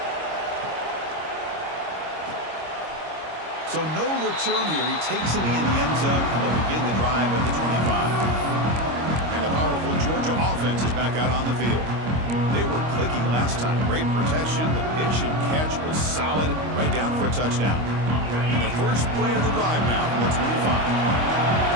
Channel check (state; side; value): late; left; 25 ms